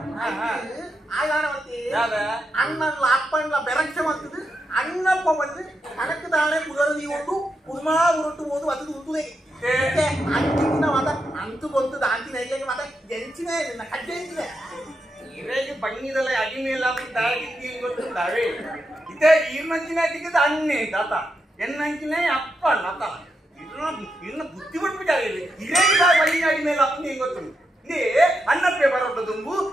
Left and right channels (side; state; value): both; normal; correlation 0.85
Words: ಅಣ್ಣಲ್ಲ ಅಪ್ಪಣ್ಣ ಬೆರಕ್ಷೆ ಮಾಡ್ತದೆ ಅಣ್ಣಪ್ಪ ಬಂದು ಕಣಕ್ಕೆ ತಾಳೆ ಪುರದಿ ಉಂಟು ಕುದುಮಾ ಉರುಟ್ಟು ಹೋದು ಅದು ಉಂಟುದೇ ಅಂತಿನ ಮತ ಅಂತು ಬಂತು ಅಂತಿನ ಹೇಗೆ ಮತ ಜಂಚಿನ ಕಡ್ಡೆ ಎಂಚಿನ ಇರೇಗೆ ಬಣ್ಣಿದಲ್ಲ ಅಡಿಮೇಲ ತಾಗಿದ್ದಿ ಗೊತ್ತುಂಟಾವೆ ಇದೇ ಈರ್ನಂಚಿನ ತಿಕ್ಕದ ಅಣ್ಣೆ ತಾತ ಎನ್ನಂಚಿನ ಅಪ್ಪ ನತ ಇನ್ನ ಬುದ್ಧಿ ಬಿಟ್ಬಿಟ್ಟಾರೆ ಇರೇಗ ಬಣ್ಣಿನ ಅಡಿಮೇಲೆ ಅಪ್ಪನೇ ಗೊತ್ತುಂಟು ಇದೇ ಅನ್ನಪ್ಪೆ ಬರೋದು ತುಂಬು